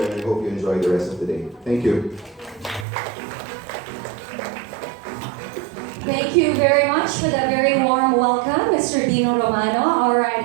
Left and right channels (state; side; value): drops out; left; at 2.9 s